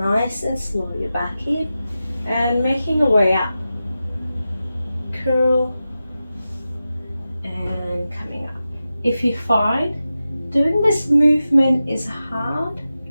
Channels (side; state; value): both; inverted; correlation -0.92